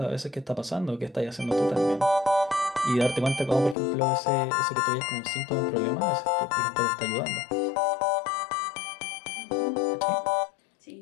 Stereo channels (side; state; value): right; drops out; at 3.8 s